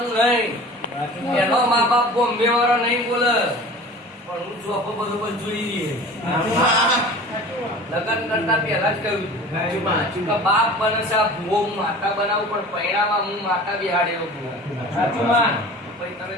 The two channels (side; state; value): both; normal; correlation 0.41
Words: નહીં. એનો મા બાપ બોમ્બે વાળો નહીં બોલે પણ હું જોબ બરોબર જોઈ રહીએ. લગ્ન કરતા પહેલા જ કહ્યું કે બાપ બને છે આ ભૂવો હું માતા બનાવું પણ પૈણામાં હું માતા બિહાડેલો ભૂવો. સાચું માં ભાઈ તમે